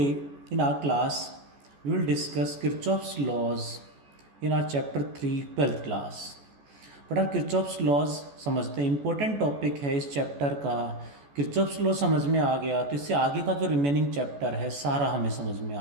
in our class we will discuss Kirchhoff's laws in our chapter 3 12th class. But आप Kirchhoff's laws समझते हैं, important topic है इस chapter का। Kirchhoff's law समझ में आ गया तो इससे आगे का जो रिमेनिंग चैप्टर है सारा हमें समझ में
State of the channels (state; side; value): late; left; 14 ms